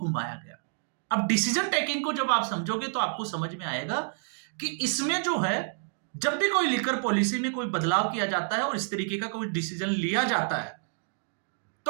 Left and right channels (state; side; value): silent; left; digital silence